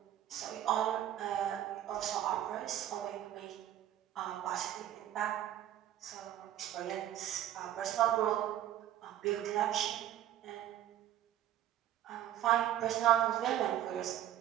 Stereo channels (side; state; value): left; quieter; 12.0 dB